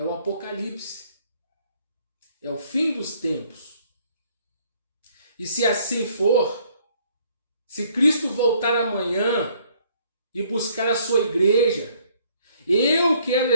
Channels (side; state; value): both; inverted; correlation -0.63